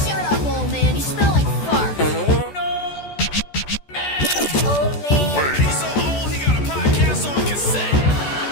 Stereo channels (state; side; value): late; right; 14 ms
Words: Shut up, old man. You smell like fart. No, man! Old man. He's so old, he got a podcast on cassette.